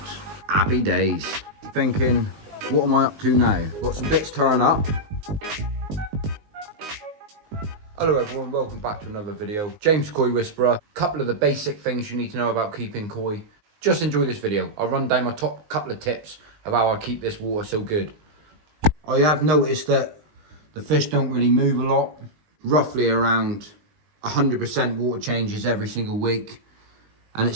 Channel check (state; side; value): late; left; 19 ms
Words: Happy days. Thinking, what am I up to now? Got some bits turn up. Hello everyone, welcome back to another video. James Koi Whisperer. Couple of the basic things you need to know about keeping koi. Just enjoy this video. I'll run down my top couple of tips of how I keep this water so good. I have noticed that the fish don't really move a lot. Roughly around 100% water changes every single week. And it